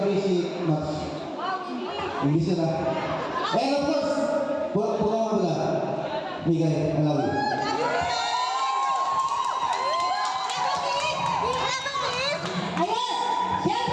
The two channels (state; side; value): identical; both; correlation 1.00